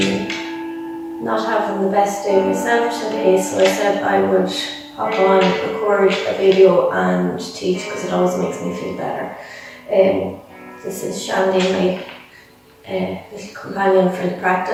not having the best day myself today, so I said I would hop on, record a video and teach because it always makes me feel better. This is Shandy, my little companion for the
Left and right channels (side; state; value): both; identical; correlation 1.00